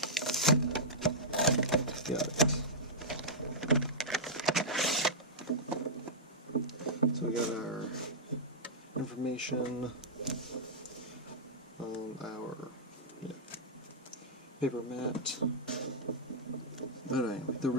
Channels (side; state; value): both; normal; correlation -0.10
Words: Got it. So we got our information on our paper mat. But anyway, the